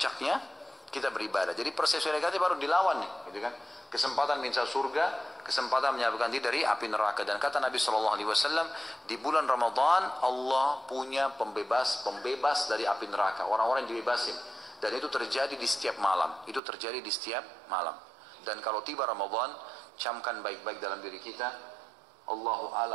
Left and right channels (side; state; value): left; drops out; at 16.6 s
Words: kita beribadah. Jadi persepsi negatif harus dilawan nih, gitu kan? Kesempatan minta surga, kesempatan menyelamatkan diri dari api neraka. Dan kata Nabi SAW, di bulan Ramadan Allah punya pembebas dari api neraka. Orang-orang yang dibebasin. Dan itu terjadi di setiap malam. Itu terjadi di setiap malam. Dan kalau tiba Ramadan, camkan baik-baik dalam diri kita. Allahu